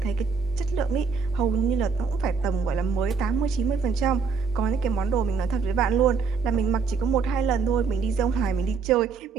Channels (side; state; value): left; quieter; 5.2 dB